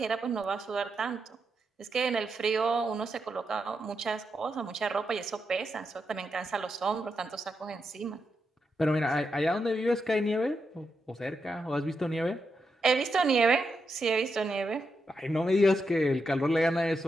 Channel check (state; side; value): normal; both; correlation 0.84